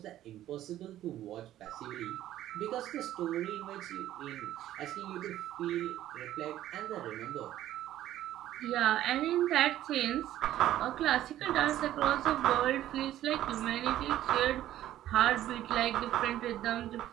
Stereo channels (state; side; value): quieter; left; 13.1 dB